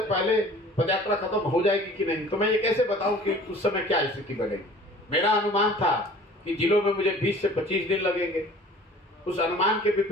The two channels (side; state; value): both; normal; correlation 0.48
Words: पहले पदयात्रा खत्म हो जाएगी कि नहीं, तो मैं ये कैसे बताऊं कि उस समय क्या स्थिति बनेगी। मेरा अनुमान था कि जिलों में मुझे 20 से 25 दिन लगेंगे। उस अनुमान के